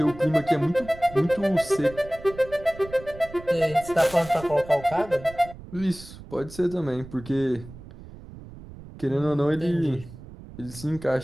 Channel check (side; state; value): right; noise; rumble, 16 dB below the sound